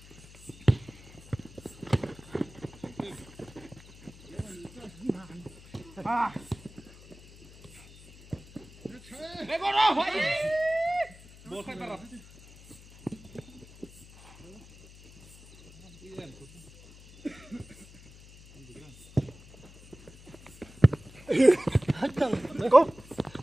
Để con đâu vậy? Một khai tao. Hết chân. Đấy cô.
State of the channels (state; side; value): noise; left; hum, 21 dB below the sound